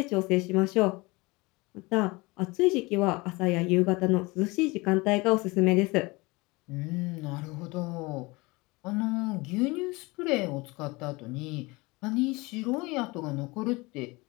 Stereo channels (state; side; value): quieter; right; 24.2 dB